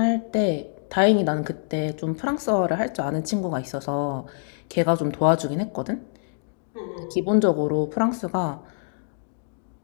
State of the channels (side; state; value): right; silent; digital silence